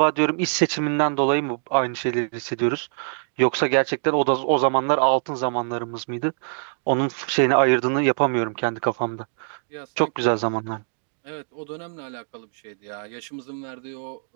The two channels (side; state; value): left; silent; digital silence